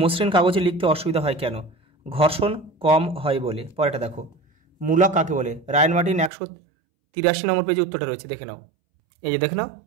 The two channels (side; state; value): left; drops out; at 6.3 s